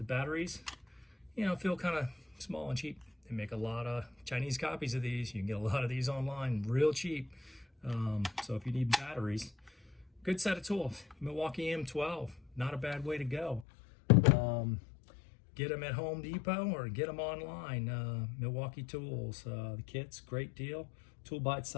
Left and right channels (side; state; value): right; drops out; at 13.7 s